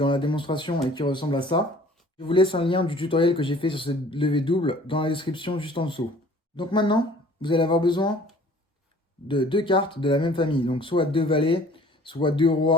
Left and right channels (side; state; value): both; normal; correlation 0.52